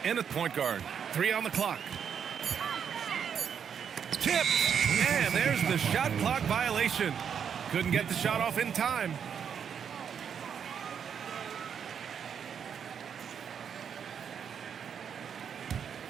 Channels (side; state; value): left; quieter; 7.6 dB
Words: in at point guard. 3 on the clock. Tip! And there's the shot clock violation. Couldn't get the shot off in time.